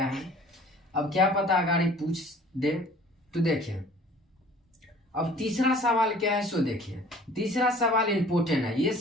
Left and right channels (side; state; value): both; normal; correlation 0.50